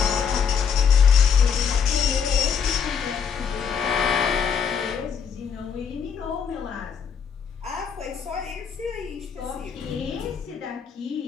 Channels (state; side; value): quieter; right; 6.8 dB